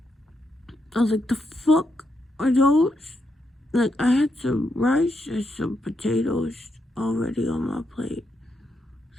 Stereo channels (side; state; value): both; normal; correlation 0.81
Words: I was like, the fuck are those? Like, I had some rice and some potatoes already on my plate,